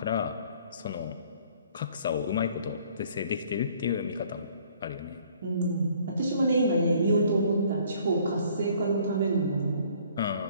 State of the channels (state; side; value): inverted; both; correlation -0.58